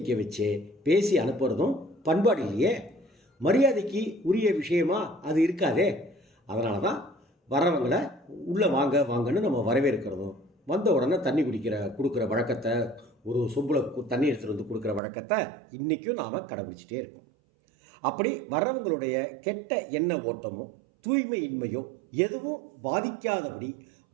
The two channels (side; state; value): left; drops out; at 15.0 s